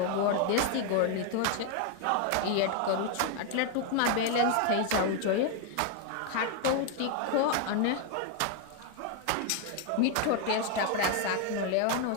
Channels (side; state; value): both; different; correlation 0.01